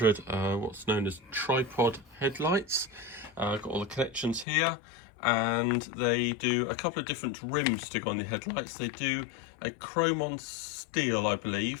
what's known as tripod headlights. I've got all the connections here, and they do a couple of different rims to go on the headlights. They do a chrome on steel, I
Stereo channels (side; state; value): right; drops out; at 4.5 s